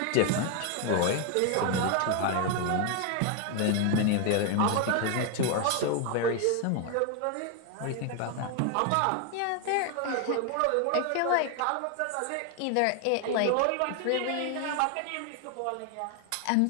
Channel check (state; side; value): different; both; correlation 0.01